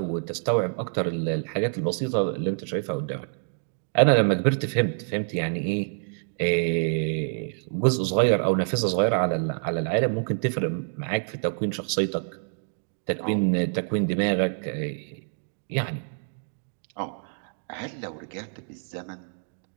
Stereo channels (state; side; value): silent; left; digital silence